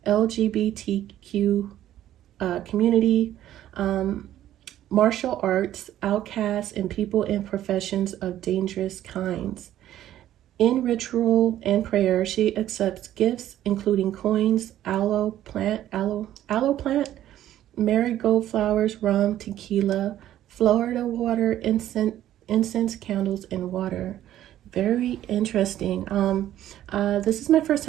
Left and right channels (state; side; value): quieter; left; 12.5 dB